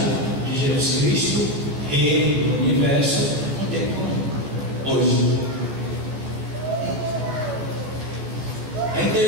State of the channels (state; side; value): late; left; 14 ms